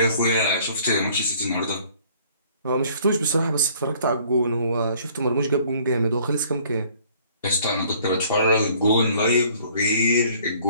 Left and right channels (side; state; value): both; inverted; correlation -0.57